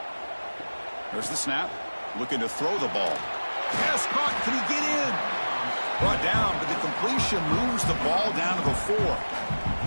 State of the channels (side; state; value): both; inverted; correlation -1.00